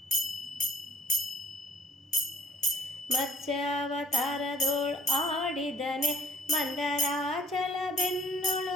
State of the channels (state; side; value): normal; both; correlation 0.59